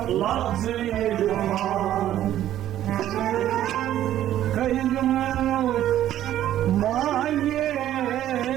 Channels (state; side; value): quieter; left; 12.3 dB